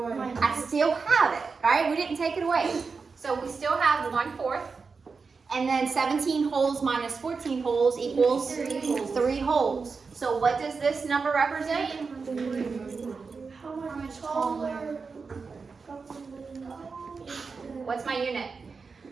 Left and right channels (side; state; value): left; quieter; 4.8 dB